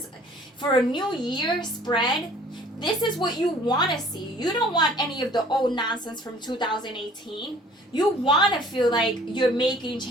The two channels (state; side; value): normal; both; correlation 0.53